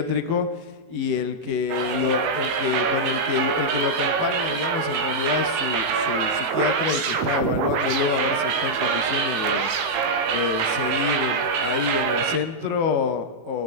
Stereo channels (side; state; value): left; late; 18 ms